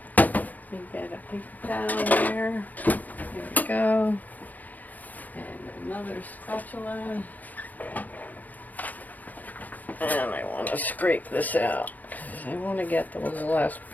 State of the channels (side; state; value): right; late; 0.081 ms